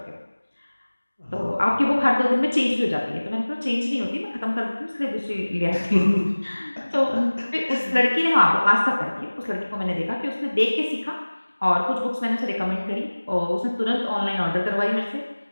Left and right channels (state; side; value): inverted; both; correlation -1.00